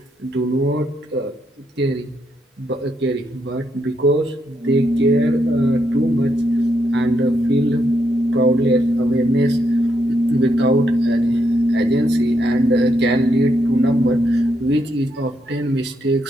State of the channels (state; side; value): normal; both; correlation 0.78